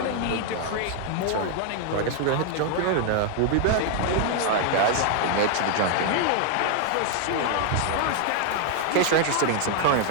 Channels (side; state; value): both; different; correlation 0.00